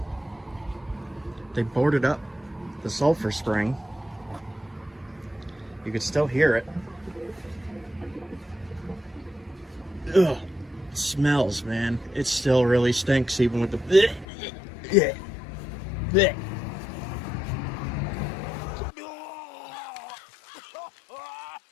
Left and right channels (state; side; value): drops out; right; at 14.2 s